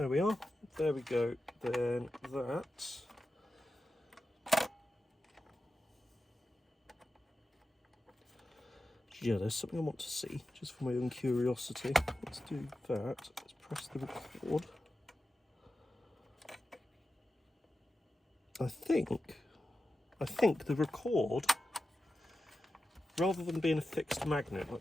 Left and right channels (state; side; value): normal; both; correlation 0.92